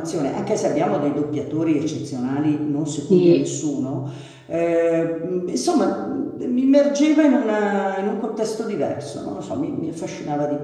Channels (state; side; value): identical; both; correlation 1.00